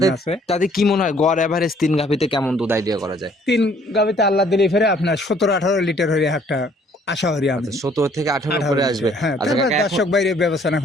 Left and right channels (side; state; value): both; normal; correlation 0.61